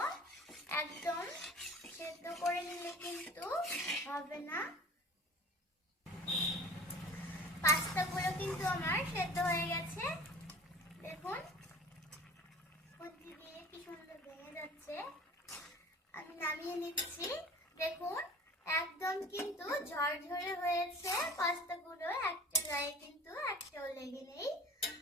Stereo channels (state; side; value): normal; both; correlation 0.42